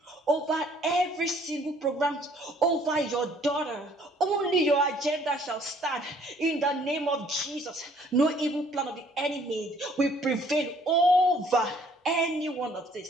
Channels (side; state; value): both; normal; correlation 0.60